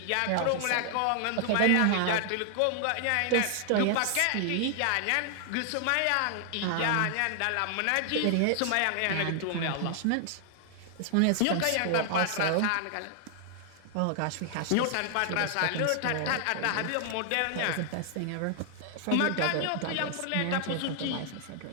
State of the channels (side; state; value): both; different; correlation 0.00